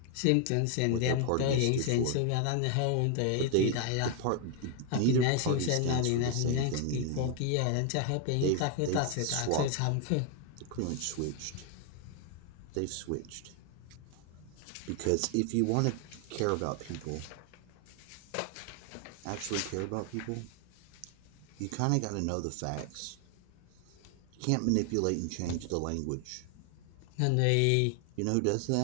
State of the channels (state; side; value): different; both; correlation 0.00